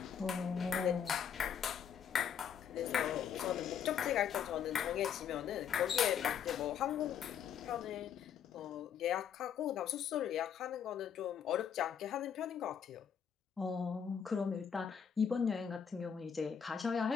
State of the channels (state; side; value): quieter; right; 7.9 dB